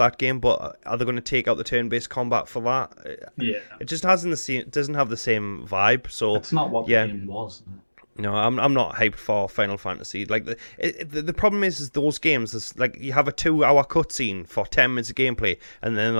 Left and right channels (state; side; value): inverted; both; correlation -1.00